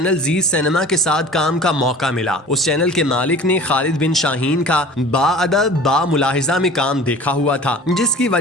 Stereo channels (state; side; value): normal; both; correlation 0.42